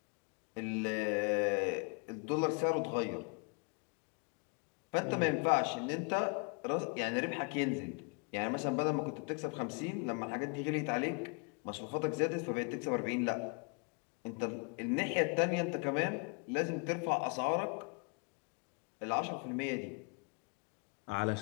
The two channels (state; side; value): quieter; right; 36.1 dB